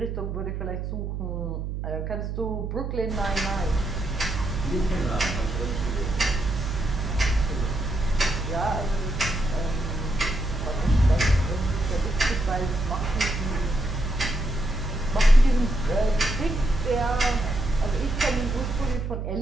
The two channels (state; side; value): noise; right; hum, 4 dB below the sound